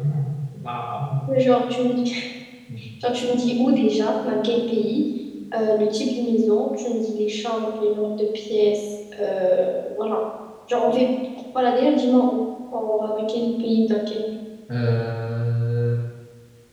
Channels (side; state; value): both; identical; correlation 1.00